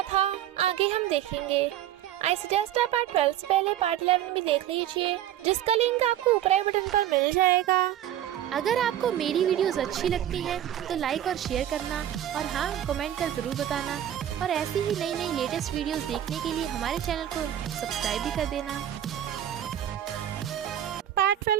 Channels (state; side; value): quieter; left; 11.6 dB